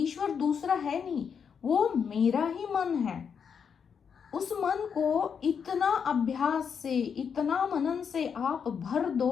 दूसरा है नहीं, वो मेरा ही मन है। उस मन को इतना अभ्यास से, इतना मनन से आप भर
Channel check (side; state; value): right; quieter; 6.9 dB